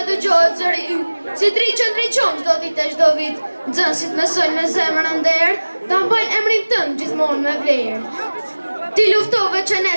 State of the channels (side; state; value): both; inverted; correlation -1.00